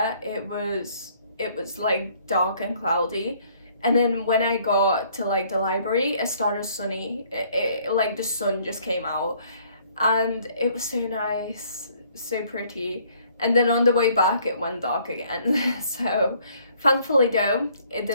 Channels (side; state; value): both; inverted; correlation -0.62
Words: it was like dark and cloudy. And then when I got to like the library, it started sunny. Like the sun just came out, and it was so nice, so pretty. And then on the way back, it went dark again. So thankfully though, it